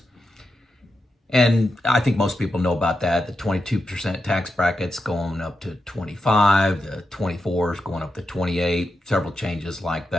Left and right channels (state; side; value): normal; both; correlation 0.88